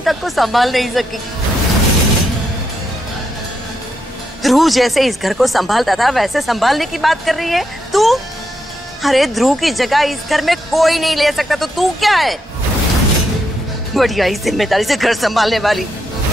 तक को संभाल नहीं सकी। ध्रुव जैसे इस घर को संभालता था वैसे संभालने की बात कर रही है तू? अरे ध्रुव की जगह इस घर में कोई नहीं ले सकता, तो तू क्या है? बढ़िया ही जिम्मेदारी से घर संभालने वाली।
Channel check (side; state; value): both; normal; correlation 0.81